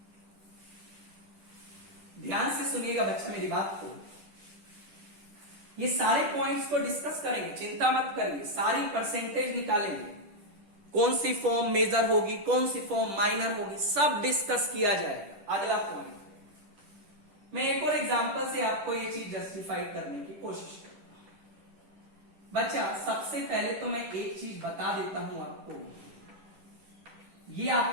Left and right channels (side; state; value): left; late; 10 ms